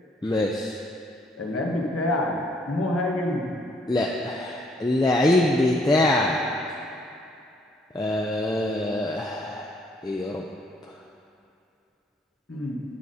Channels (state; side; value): normal; both; correlation 0.67